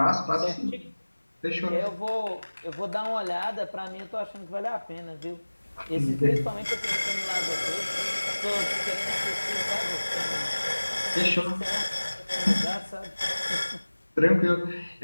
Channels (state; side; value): inverted; both; correlation -1.00